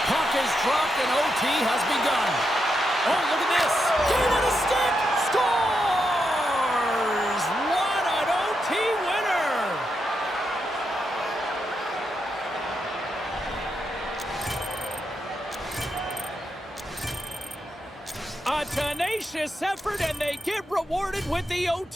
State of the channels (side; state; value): both; normal; correlation 0.84